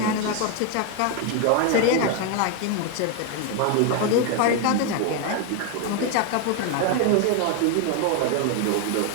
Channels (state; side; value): different; both; correlation 0.01